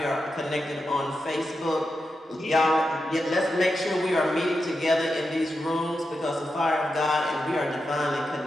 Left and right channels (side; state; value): both; normal; correlation 0.88